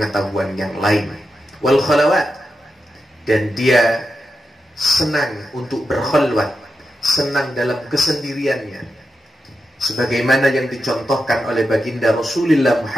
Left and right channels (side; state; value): both; normal; correlation 0.88